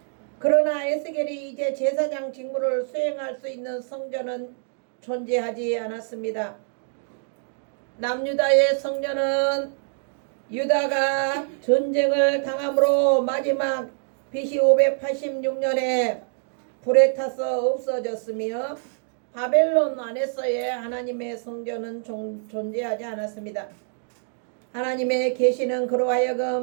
그러나 에스겔이 이제 제사장 직무를 수행할 수 있는 성전은 존재하지 않았습니다. 남유다의 성전은 유다가 전쟁을 당함으로 마지막 BC 586년에 불에 타서 없어졌으며 바벨론 안에서의 하나님의 성전은 존재하지 않았습니다. 하나님의 계시는 그로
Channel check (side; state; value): left; silent; digital silence